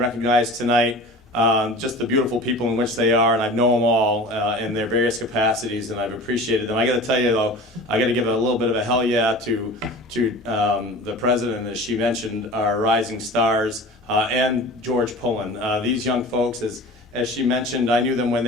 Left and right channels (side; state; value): both; normal; correlation 0.38